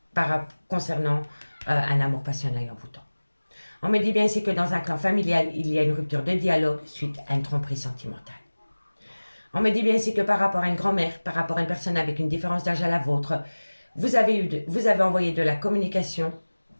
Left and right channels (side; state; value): both; inverted; correlation -1.00